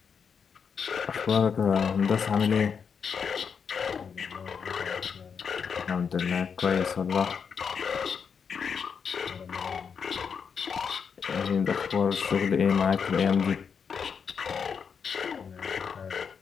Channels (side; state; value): right; quieter; 6.5 dB